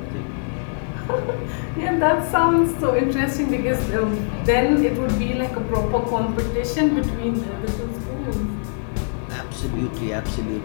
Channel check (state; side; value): silent; right; digital silence